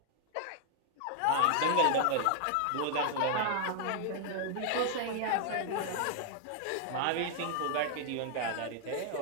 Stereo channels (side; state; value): both; different; correlation 0.00